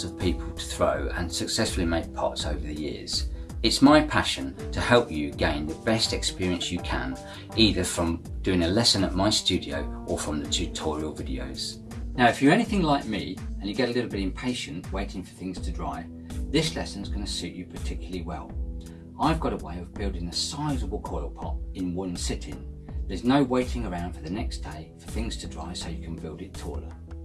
of people to throw and successfully make pots over the years. It's my passion to help you gain the best experience you can, either from doing a lesson at my studio or from the tutorial videos. Now, if you're anything like me and you get a little bit impatient waiting for things to dry, this lesson is going to suit you particularly well. I've got a way of building a sizable coil pot in one sitting. There's no waiting around for the next day for things to dry so you can build it taller.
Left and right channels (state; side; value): identical; both; correlation 1.00